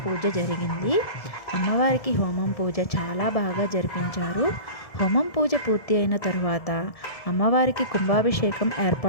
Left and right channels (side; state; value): right; late; 1.7 ms